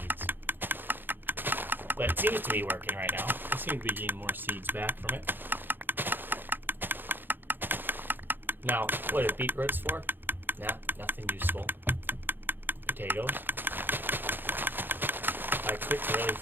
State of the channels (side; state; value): left; late; 0.095 ms